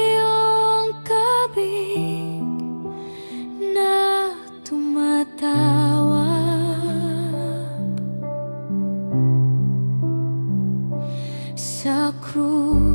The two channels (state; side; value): inverted; both; correlation -1.00